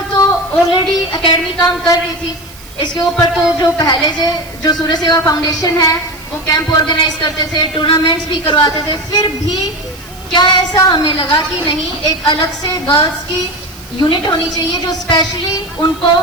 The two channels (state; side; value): noise; right; hiss, 21 dB below the sound